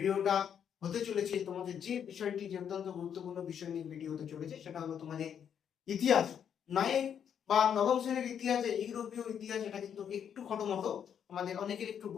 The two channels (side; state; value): right; quieter; 8.4 dB